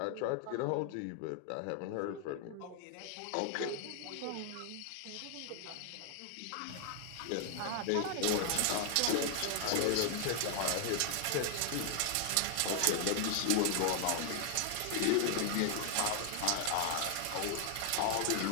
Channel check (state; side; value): different; both; correlation 0.00